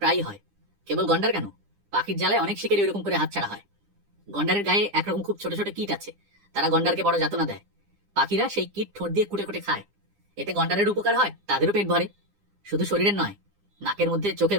হয়, কেবল গন্ডার কেন, পাখির জ্বালায় অনেক শিকারী ওইরকম করে হাতছাড়া হয়। গন্ডারের গায়ে একরকম খুব ছোট ছোট কীট আছে, তারা গন্ডারকে বড় যাতনা দেয়। পাখিরা সেই কীট ঠোঁট দিয়ে কুটে কুটে খায়, এতে গন্ডারের উপকার হয়, তাদেরও পেট ভরে। শুধু শরীরের নয়, নাকের মধ্যে, চোখের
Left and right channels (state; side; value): late; left; 9.9 ms